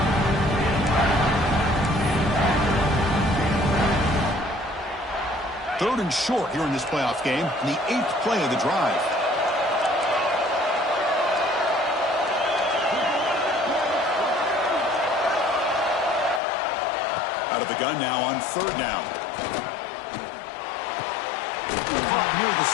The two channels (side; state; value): right; drops out; at 16.4 s